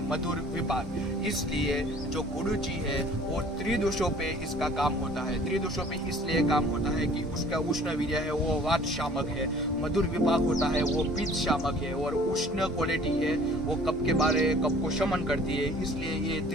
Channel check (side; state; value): both; normal; correlation 0.51